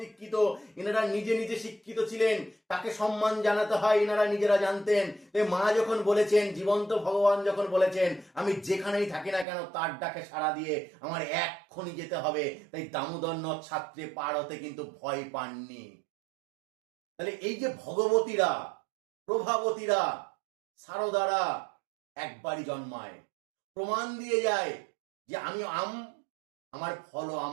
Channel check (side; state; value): left; drops out; at 9.5 s